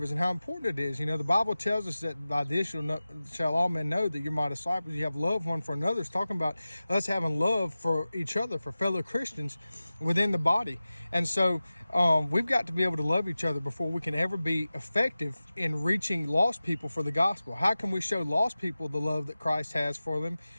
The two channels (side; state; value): both; inverted; correlation -0.96